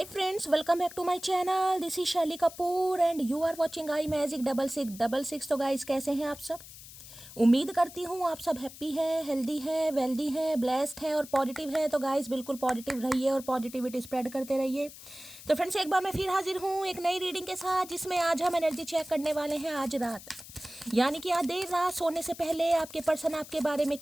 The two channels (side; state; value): left; noise; hiss, 16 dB below the sound